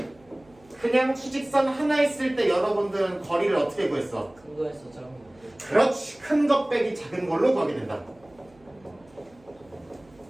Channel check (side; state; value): right; noise; hum, 29 dB below the sound